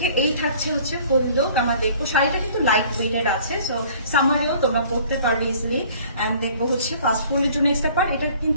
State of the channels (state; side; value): inverted; both; correlation -0.53